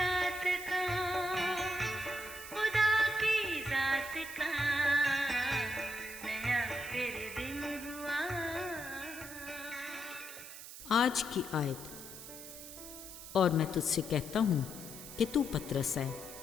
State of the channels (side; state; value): right; noise; hiss, 12 dB below the sound